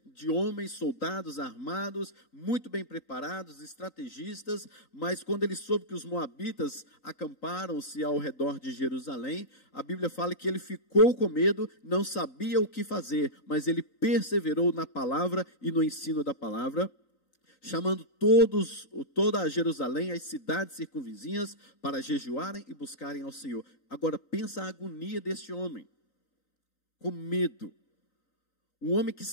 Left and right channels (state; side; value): late; right; 3.9 ms